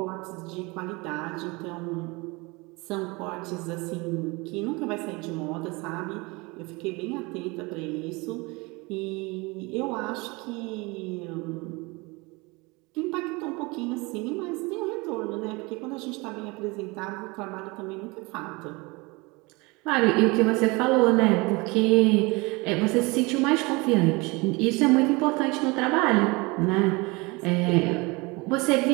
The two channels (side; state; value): left; quieter; 25.7 dB